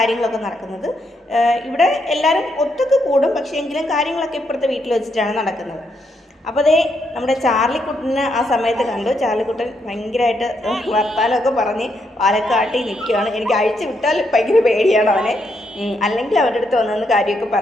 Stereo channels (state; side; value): normal; both; correlation 0.78